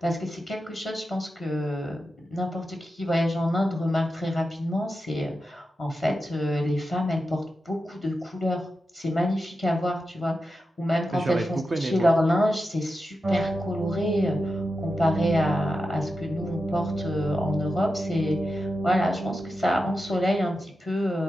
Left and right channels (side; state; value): both; normal; correlation 0.90